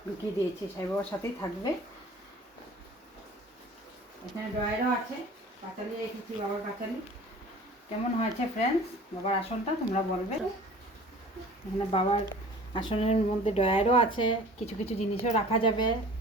ঢুকিয়ে দিয়েছি। সাই বাবার সাথেই থাকবে। এখানে ড্রয়ারও আছে, পাঁচালি রেখেছি, বাবার পাঁচালি। কেমন হয়েছে ফ্রেন্ডস বাবার আসনটা তোমরা বলবে। এখানে বাবার আসনের মধ্যে ড্রয়ারও আছে, কিছু কিছু জিনিসও রাখা যাবে।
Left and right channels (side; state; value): both; normal; correlation 0.45